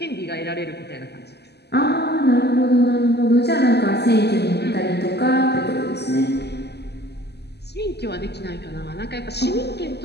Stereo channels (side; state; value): right; late; 0.49 ms